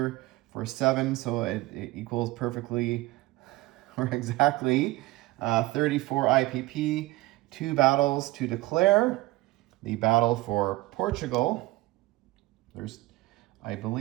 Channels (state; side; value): quieter; left; 19.4 dB